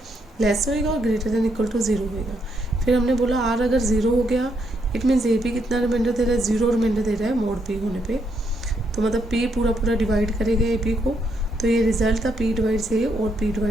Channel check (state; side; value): normal; both; correlation 0.77